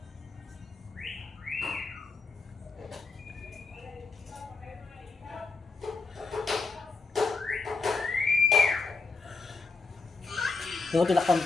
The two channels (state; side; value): quieter; right; 4.1 dB